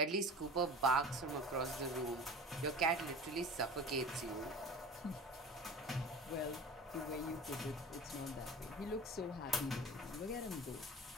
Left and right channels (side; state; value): both; normal; correlation 0.37